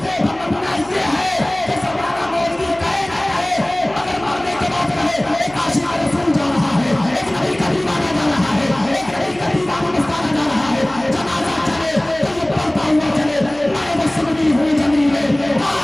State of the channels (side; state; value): left; noise; hum, 22 dB below the sound